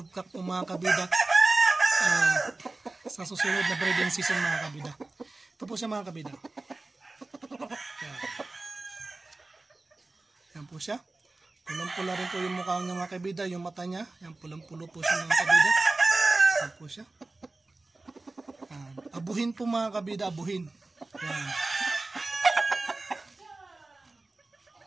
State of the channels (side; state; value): left; quieter; 3.2 dB